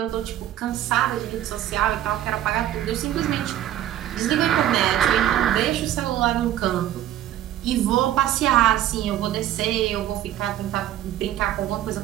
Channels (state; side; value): quieter; left; 12.3 dB